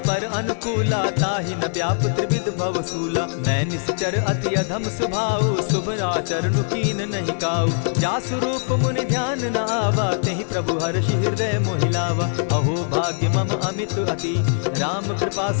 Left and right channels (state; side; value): silent; right; digital silence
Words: पर अनुकूला, ताहि न व्याप त्रिविध भवसूला। मैं निश्चर अति अधम स्वभाव, शुभ चरण कीन नहीं काऊ। जासु रूप मुनि ध्यान न आवा, तेहि प्रभु हर्षि हृदय मोहिलावा। अहो भाग्य मम अमित अति, राम कृपा